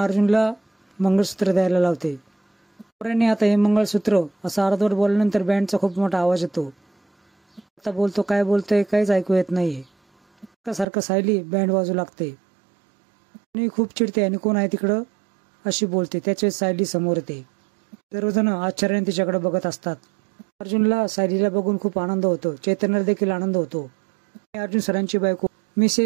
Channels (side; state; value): left; drops out; at 10.9 s